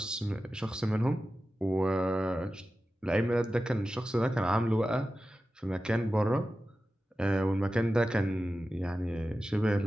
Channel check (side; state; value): both; normal; correlation 0.93